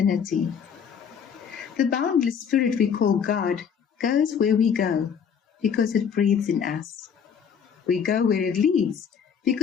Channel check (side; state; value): right; quieter; 7.2 dB